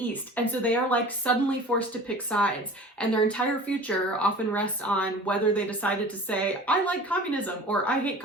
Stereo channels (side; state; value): both; normal; correlation 0.41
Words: And so they are like suddenly forced to pick sides, and their entire future often rests on whether they decided to say, I like communism or I hate